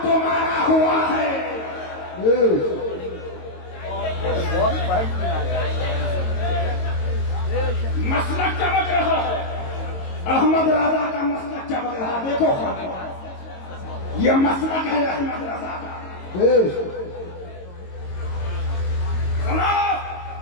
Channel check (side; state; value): right; late; 22 ms